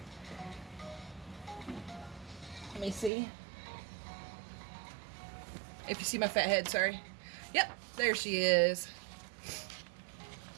Let me see. If you see my fat head, sorry. Yep, there she is.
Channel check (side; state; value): left; drops out; at 3.1 s